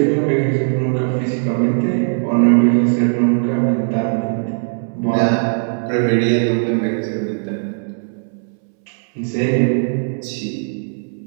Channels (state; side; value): silent; left; 65 dB below the other